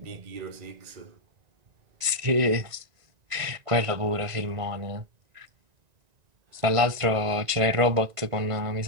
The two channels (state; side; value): late; left; 1.9 ms